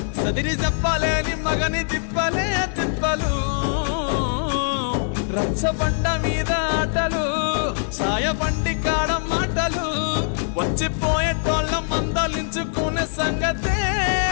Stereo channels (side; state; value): right; silent; 58 dB below the other